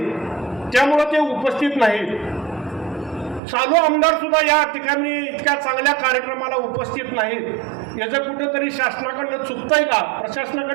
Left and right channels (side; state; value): left; drops out; at 3.4 s